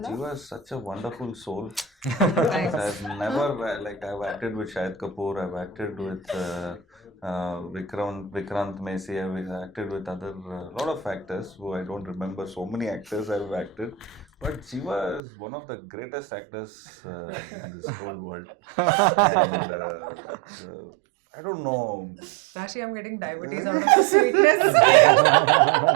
Jiva is such a wonderful soul. Thanks. I've never I've acted with Shahid Kapoor, I've acted with Vikrant Messi, I've acted with other lot of actors who I don't remember. So many actors I've acted, but Jiva is one of the greatest actors in this whole world. And, I don't know. Rashi, I'm getting diabetes out of the sweetness.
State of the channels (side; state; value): left; drops out; at 15.2 s